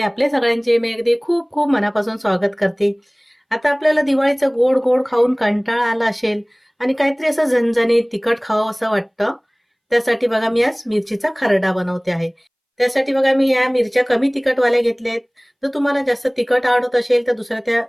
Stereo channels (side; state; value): both; identical; correlation 1.00